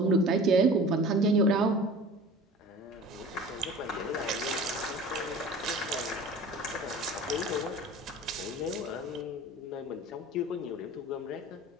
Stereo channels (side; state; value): both; normal; correlation 0.41